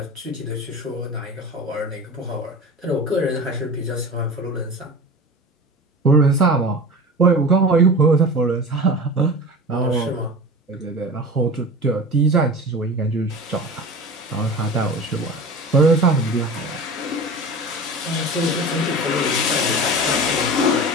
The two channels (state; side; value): normal; both; correlation 0.34